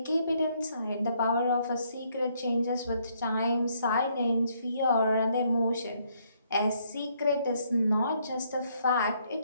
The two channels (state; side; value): inverted; both; correlation -0.70